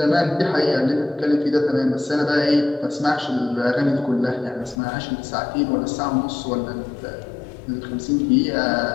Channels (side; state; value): right; drops out; at 4.8 s